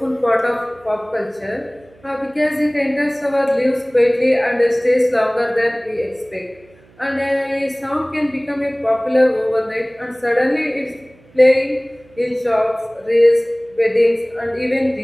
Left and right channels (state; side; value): noise; right; hum, 28 dB below the sound